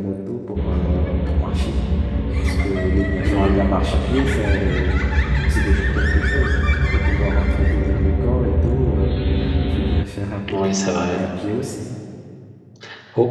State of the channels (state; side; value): identical; both; correlation 1.00